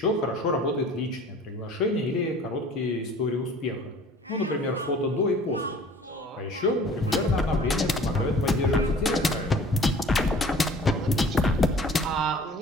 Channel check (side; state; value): both; normal; correlation 0.49